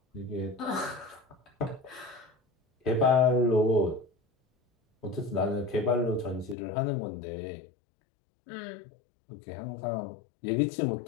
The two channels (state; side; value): drops out; right; at 6.6 s